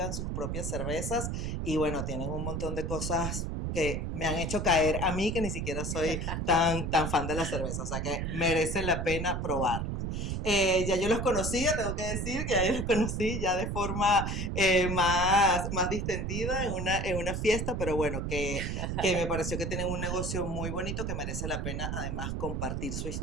sus propias cervezas y bueno, tienen un montón de cosas que me han hecho caer a mí, que ni siquiera soy tan fan de la cerveza, o sea que merece la pena probarlo. Ya yo los conocía, tengo que decir que ya yo los conocí ya de forma más distendida en una fiesta, pero bueno, que me pareció que tienen un negocio muy bonito que merece la pena además compartir su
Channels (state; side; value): noise; right; rumble, 2 dB below the sound